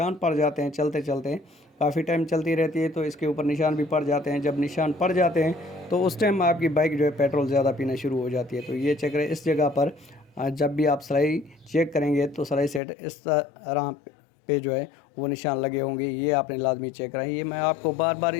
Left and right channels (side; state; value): right; drops out; at 12.8 s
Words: पड़ जाते हैं, चलते चलते काफ़ी टाइम चलती रहती है तो इसके ऊपर निशान भी पड़ जाते हैं। जब निशान पड़ जाते हैं तो उस टाइम आपकी बाइक जो है पेट्रोल ज़्यादा पीना शुरू हो जाती है। तो ये चेक करें, इस जगह पर जब भी आप सलाई चेक करेंगे तो सलाई सेट इस तरह पे जो है वो निशान लगे होंगे, ये आपने लाजमी चेक करा है। ये मैं आपको बार बार